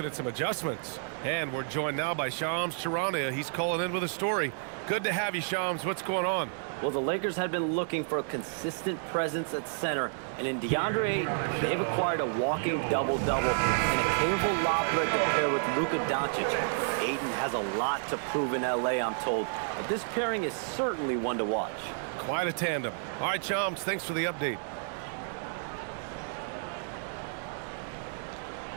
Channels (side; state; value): left; silent; digital silence